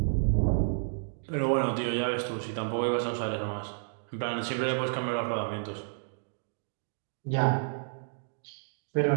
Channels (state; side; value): silent; left; digital silence